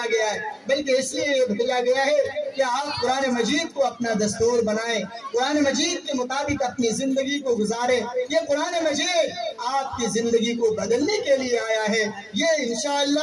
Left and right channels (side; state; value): both; identical; correlation 1.00